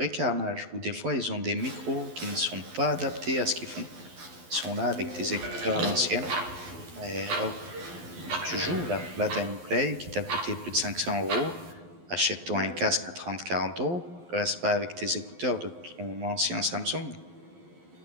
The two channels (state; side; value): late; left; 12 ms